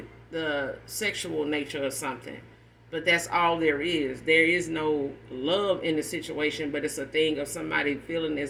the sexual nature of something. But that's all there is. There is no love in the situation, but it's a thing of somebody feeling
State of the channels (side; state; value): both; identical; correlation 1.00